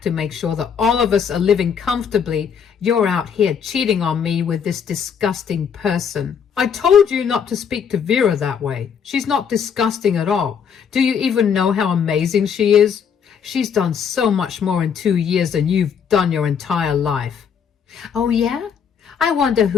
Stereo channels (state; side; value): quieter; right; 7.2 dB